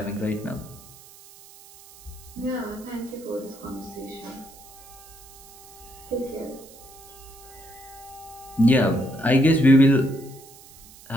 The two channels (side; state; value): right; noise; hiss, 21 dB below the sound